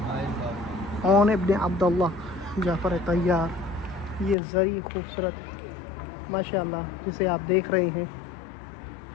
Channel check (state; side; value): drops out; right; at 4.4 s